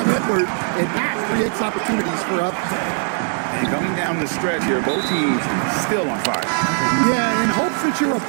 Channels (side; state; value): left; silent; 55 dB below the other